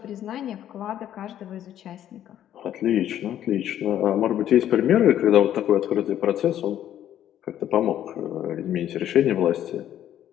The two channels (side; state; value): right; quieter; 11.2 dB